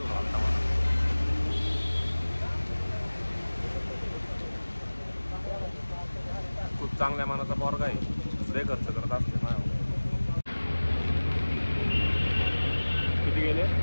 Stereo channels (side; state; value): both; inverted; correlation -1.00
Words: आलता मला. खूप चांगल्या मनाचा पोरगा आहे, लय खर्च करत असते माझ्यावर. किती गेले?